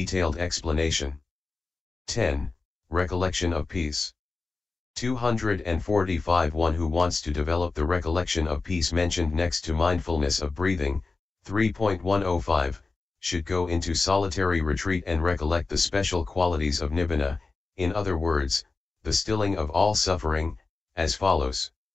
explanation. 10. Recollection of peace. 245 One who wants to develop the recollection of peace mentioned next to mindfulness of breathing, 3.105, should go into solitary retreat and recollect the special qualities of nibbana, in other words, the stilling of all suffering, as follows.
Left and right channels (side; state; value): right; quieter; 3.8 dB